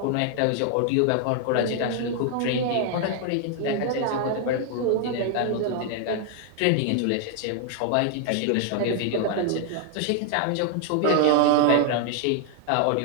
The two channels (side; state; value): both; different; correlation 0.00